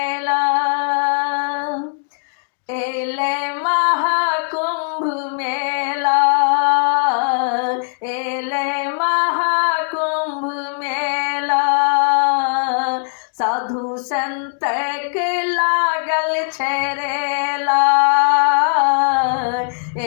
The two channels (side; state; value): right; silent; 67 dB below the other